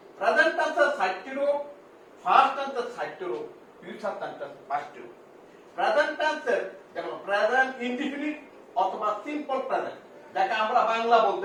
টেন্সের ৬০টি রূপ, ফার্স্ট টেন্সের ৬০টি রূপ, ফিউচার টেন্সের ৫টি রূপ। প্রেজেন্ট টেন্সের যেমন প্রেজেন্ট ইনডিফিনিট অথবা সিম্পল প্রেজেন্ট, যাকে আমরা বাংলা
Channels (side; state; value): both; identical; correlation 1.00